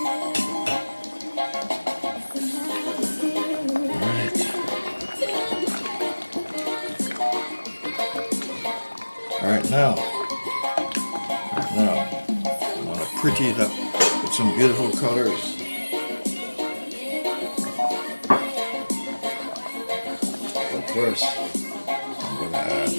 Alright, now, I want to pretty it up with some beautiful colors. But first, I'm going to add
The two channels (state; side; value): inverted; both; correlation -1.00